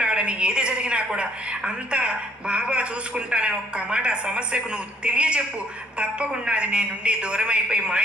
ఏది జరిగినా కూడా అంతా బాబా చూసుకుంటానని ఒక్క మాట ఆ సమస్యకు నువ్వు తెలియచెప్పు. తప్పకుండా అది నీ నుండి దూరం అయిపోయి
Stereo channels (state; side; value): normal; both; correlation 0.63